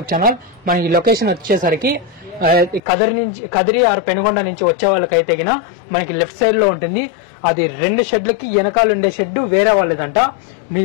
channel. మనకి లొకేషన్ వచ్చేసరికి కదిరి ఆర్ పెనుగొండ నుంచి వచ్చే వాళ్ళకైతే గిన మనకి లెఫ్ట్ సైడ్ లో ఉంటుంది. అది 2 షెడ్లకి వెనకాల ఉండే షెడ్ వేరే వాళ్ళదంట.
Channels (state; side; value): drops out; right; at 2.8 s